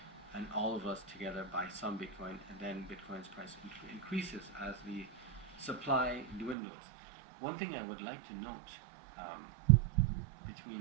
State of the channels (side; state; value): left; drops out; at 6.6 s